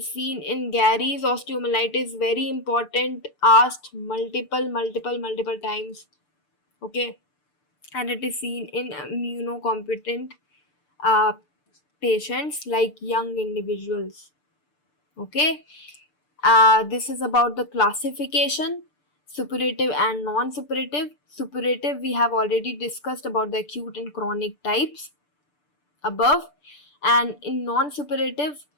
seen in Gary's osteomyelitis, very important, asked multiple times. Okay, and it is seen in immunocompetent uh, patients like young individuals. Okay, this is about the classification, suppurative and non-suppurative. Suppurative, we have already discussed about the acute and chronic types above, and in non-suppurative,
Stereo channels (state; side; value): late; right; 6.8 ms